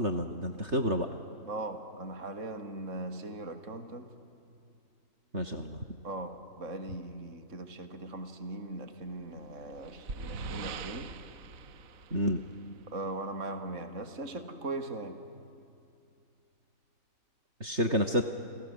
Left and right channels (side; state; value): left; late; 3.3 ms